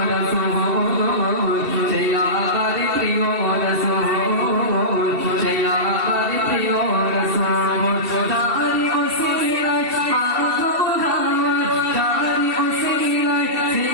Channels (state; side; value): late; left; 2.7 ms